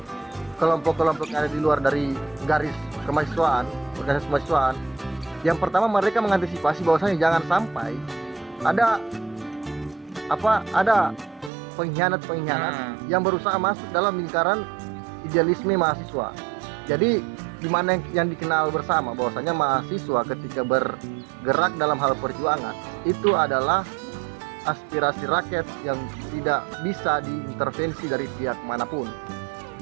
kelompok-kelompok yang ada di luar dari garis kemahasiswaan, organisasi kemahasiswaan. Yang pertama, mereka mengantisipasi bahwasanya jangan sampai ada pengkhianat-pengkhianat yang berusaha masuk dalam lingkaran idealisme mahasiswa. Jadi di mana yang dikenal bersama bahwasanya mahasiswa ketika bergerak dalam hal perjuangan itu adalah aspirasi rakyat yang tidak bisa diintervensi dari pihak manapun.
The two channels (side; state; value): left; drops out; at 11.5 s